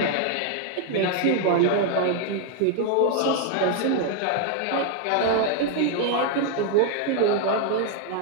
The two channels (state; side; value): different; both; correlation 0.00